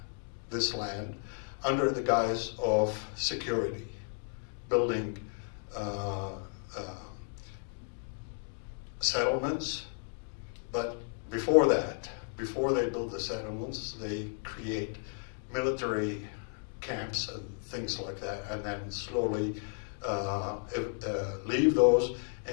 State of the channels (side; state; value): right; silent; 55 dB below the other